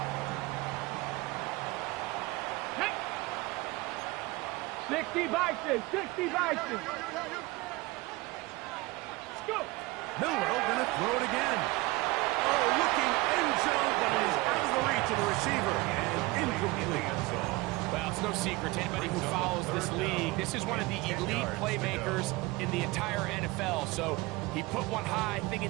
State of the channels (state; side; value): quieter; left; 22.1 dB